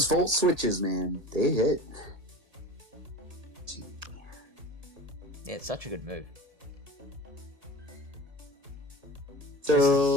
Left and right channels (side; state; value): left; late; 1.7 ms